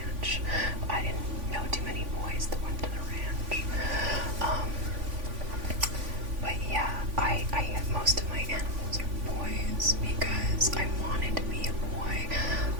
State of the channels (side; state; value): left; late; 3.5 ms